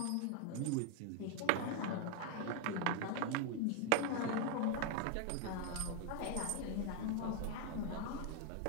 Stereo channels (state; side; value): different; both; correlation 0.00